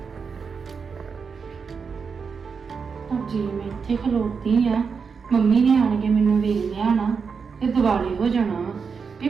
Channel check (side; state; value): left; quieter; 5.6 dB